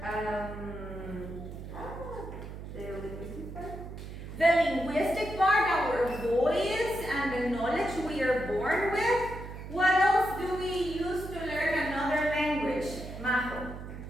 The linguistic part, our voice and the knowledge we are born with. What else do we use to learn another language, Majo?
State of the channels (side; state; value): right; noise; hum, 10 dB below the sound